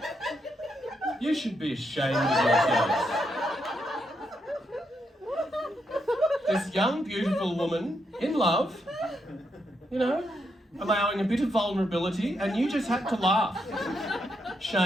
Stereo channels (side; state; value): both; normal; correlation 0.80